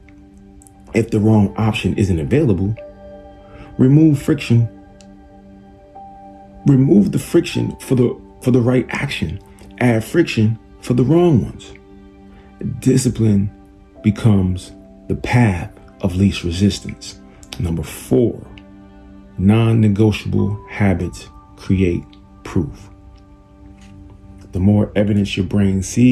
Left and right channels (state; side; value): identical; both; correlation 1.00